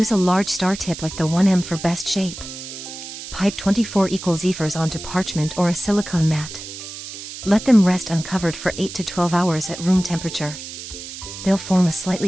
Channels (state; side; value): noise; right; hiss, 11 dB below the sound